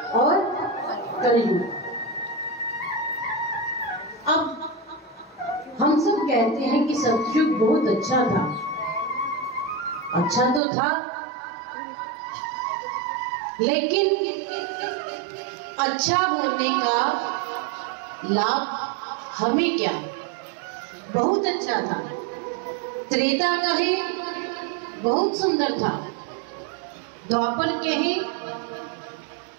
और कलयुग। अब हम सब कहते हैं कि सतयुग बहुत अच्छा था। अच्छा तो था, लेकिन अच्छा होने का लाभ हमें क्या? बहुत अच्छा था। त्रेता कहे बहुत सुंदर था, द्वापर कहे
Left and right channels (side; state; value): left; drops out; at 10.6 s